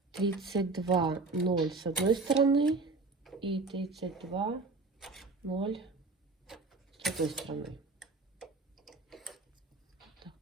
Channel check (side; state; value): left; quieter; 3.6 dB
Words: 32,0 с одной стороны и 32,0 с другой стороны. Так.